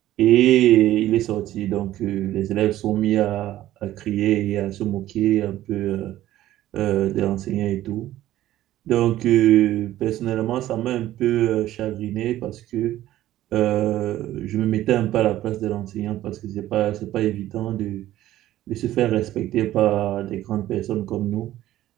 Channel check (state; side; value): quieter; left; 14.1 dB